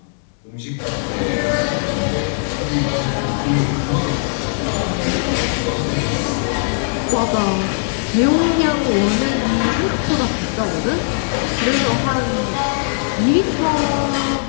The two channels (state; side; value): silent; right; 66 dB below the other